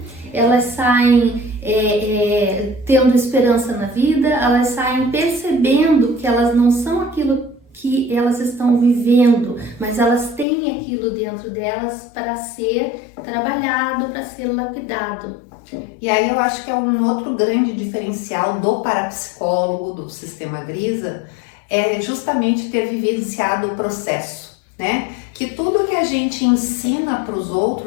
elas saem tendo esperança na vida, elas saem percebendo que elas não são aquilo que elas estão vivendo, mas elas têm aquilo dentro delas para ser trabalhado, para ser lapidado. E aí eu acho que é um outro grande diferencial do parapsicólogo, do sistema Grisa, é justamente ter vivenciado o processo, né? Que tudo que a gente ensina para os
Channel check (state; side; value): drops out; right; at 10.5 s